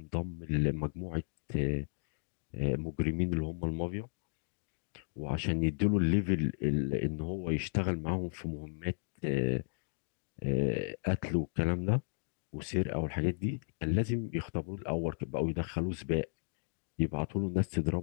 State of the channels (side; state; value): right; silent; digital silence